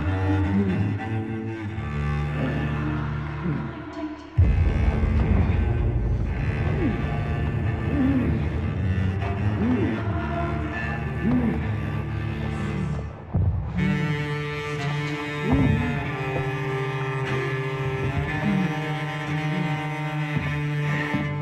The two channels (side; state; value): both; identical; correlation 1.00